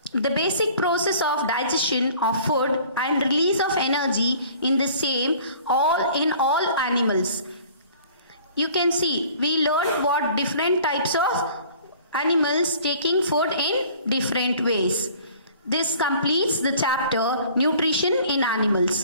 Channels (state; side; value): inverted; both; correlation -0.50